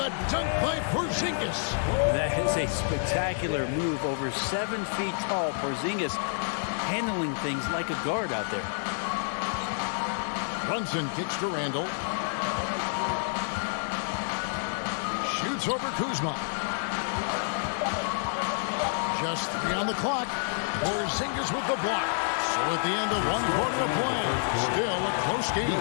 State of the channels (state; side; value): silent; right; digital silence